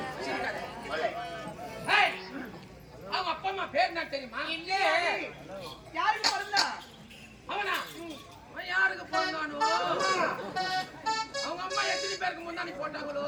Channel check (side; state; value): both; identical; correlation 1.00